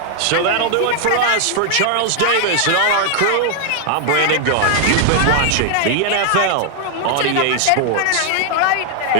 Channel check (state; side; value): different; both; correlation 0.00